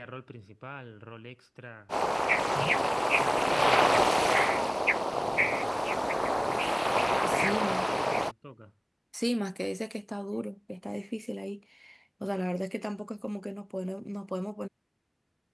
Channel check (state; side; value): identical; both; correlation 1.00